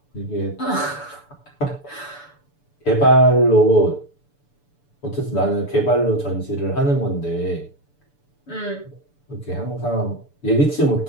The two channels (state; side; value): late; right; 6.9 ms